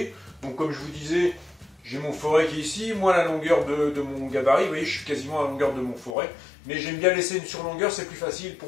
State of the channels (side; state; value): right; drops out; at 6.2 s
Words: Donc comme je vous disais, j'ai mon forêt qui est ici, moi la longueur de mon gabarit, vous voyez je suis quasiment à la longueur de mon forêt, mais j'aime bien laisser une surlongueur, c'est plus facile